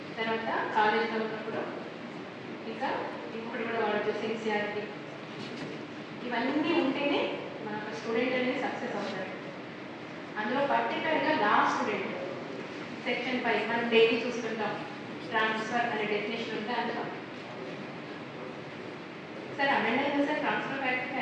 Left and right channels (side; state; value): both; identical; correlation 1.00